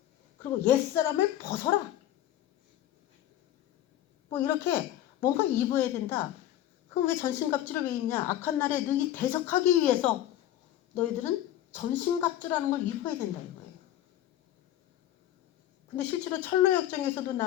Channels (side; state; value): right; quieter; 12.7 dB